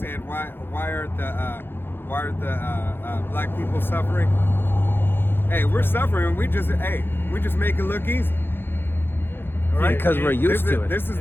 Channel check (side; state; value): right; late; 0.10 ms